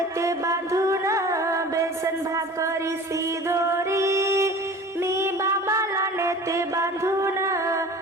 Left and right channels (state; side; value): normal; both; correlation 0.40